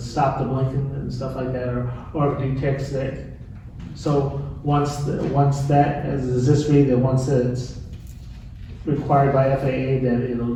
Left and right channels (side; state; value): both; identical; correlation 1.00